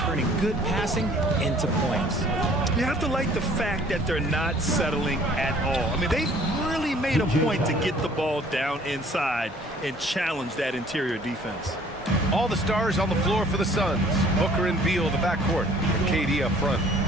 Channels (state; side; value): normal; both; correlation 0.55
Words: good passing into points. You have to like the fact that they're not settling at all. I mean, they've really made a point to get the ball down inside and challenge that interior defense. All the stars on the floor for the Suns. Booker and Beal, the backcourt, and KD up front.